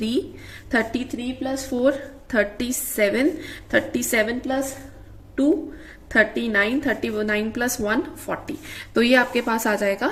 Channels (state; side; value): identical; both; correlation 1.00